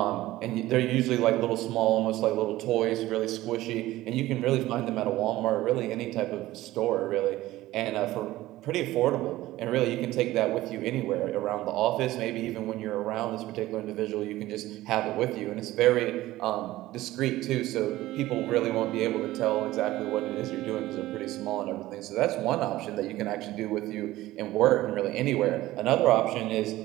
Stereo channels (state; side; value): quieter; left; 16.5 dB